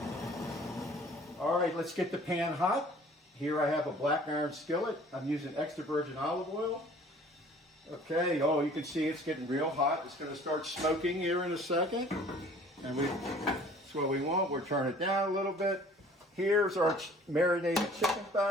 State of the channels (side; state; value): both; normal; correlation 0.51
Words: All right, let's get the pan hot. Here I have a black iron skillet. I'm using extra virgin olive oil. Okay, oh, you can see it's getting real hot. It's going to start smoking here in a second. And that's what we want. We'll turn it down a little bit. Here's our marinated chicken